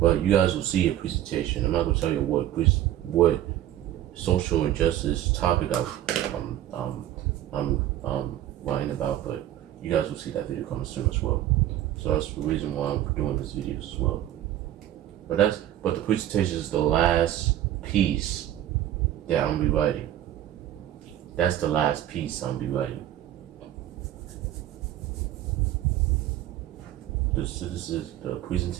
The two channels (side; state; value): left; quieter; 12.6 dB